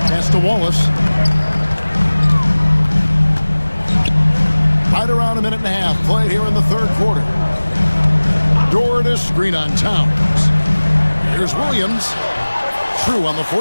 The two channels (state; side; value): inverted; both; correlation -1.00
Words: Pass to Wallace. Right around a minute and a half played here in the third quarter. Door to screen on Towns. Here's Williams. True on the